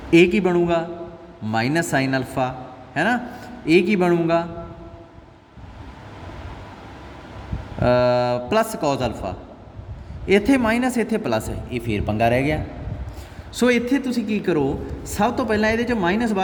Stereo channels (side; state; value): both; identical; correlation 1.00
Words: ਇਹ ਕੀ ਬਣੂਗਾ, ਮਾਈਨਸ ਸਾਈਨ ਅਲਫਾ ਹੈ ਨਾ। ਇਹ ਕੀ ਬਣੂਗਾ, ਪਲੱਸ ਕੋਜ਼ ਅਲਫਾ। ਇੱਥੇ ਮਾਈਨਸ, ਇੱਥੇ ਪਲੱਸ ਹੈ, ਇਹ ਫੇਰ ਪੰਗਾ ਰਹਿ ਗਿਆ। ਸੋ ਇੱਥੇ ਤੁਸੀਂ ਕੀ ਕਰੋ, ਸਭ ਤੋਂ ਪਹਿਲਾਂ ਇਹਦੇ 'ਚ ਮਾਈਨਸ